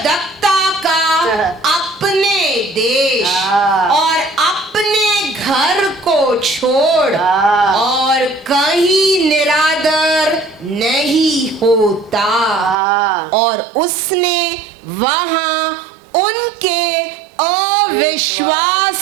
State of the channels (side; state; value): left; drops out; at 12.8 s